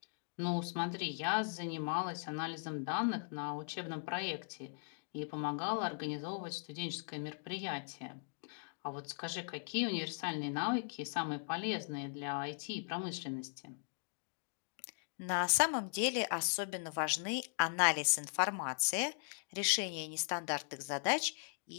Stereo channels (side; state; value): right; silent; digital silence